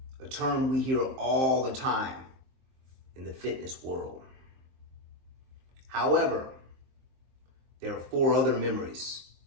a term we hear all the time in the fitness world. However, there are 4 other memories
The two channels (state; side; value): late; left; 23 ms